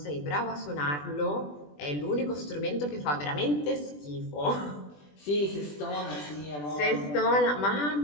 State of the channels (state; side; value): late; right; 20 ms